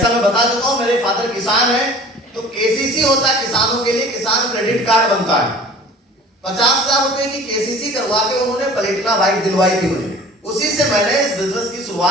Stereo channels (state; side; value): normal; both; correlation 0.46